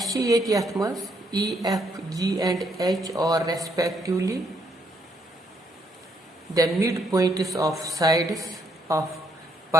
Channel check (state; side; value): normal; both; correlation 0.73